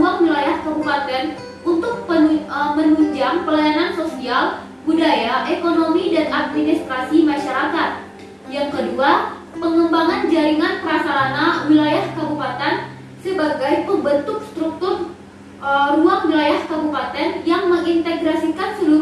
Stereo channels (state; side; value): identical; both; correlation 1.00